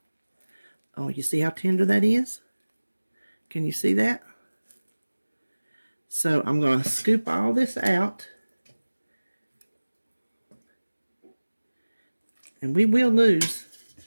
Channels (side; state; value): both; inverted; correlation -1.00